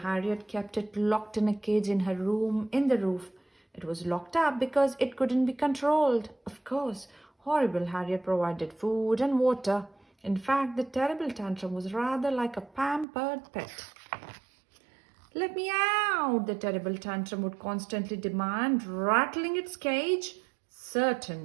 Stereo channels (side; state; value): left; drops out; at 13.1 s